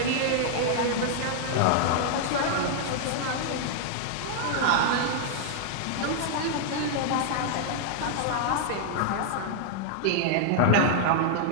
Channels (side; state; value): both; different; correlation -0.01